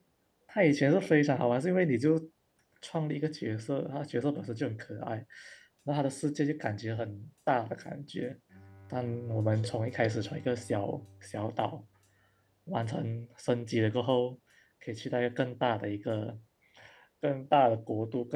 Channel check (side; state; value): both; identical; correlation 1.00